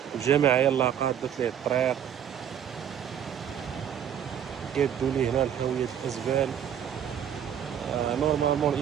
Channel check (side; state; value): left; quieter; 9.2 dB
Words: الجماعة يلاه قادت ليه الطريق، قادوا ليه هنا الحاويات الأزبال. نورمالمون